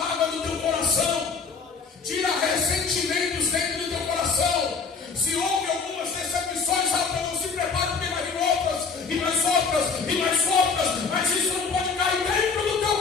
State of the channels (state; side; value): quieter; right; 5.1 dB